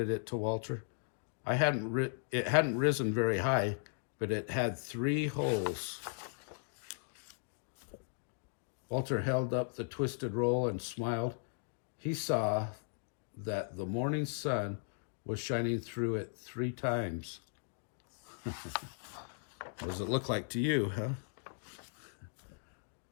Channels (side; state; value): right; silent; digital silence